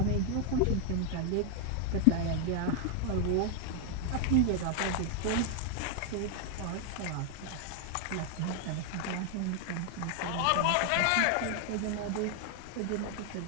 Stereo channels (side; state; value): both; different; correlation 0.00